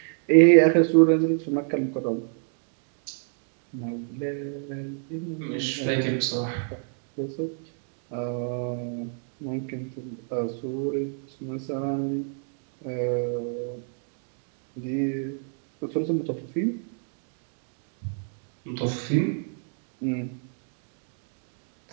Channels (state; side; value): silent; left; 59 dB below the other